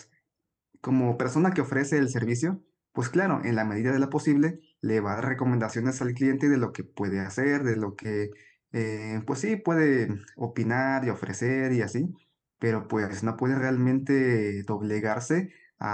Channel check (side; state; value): both; identical; correlation 1.00